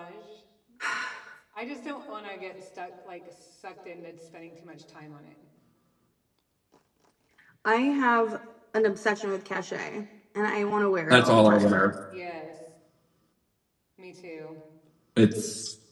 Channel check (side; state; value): both; identical; correlation 1.00